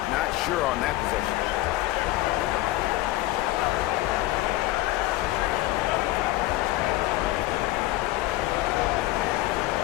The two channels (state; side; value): quieter; right; 17.3 dB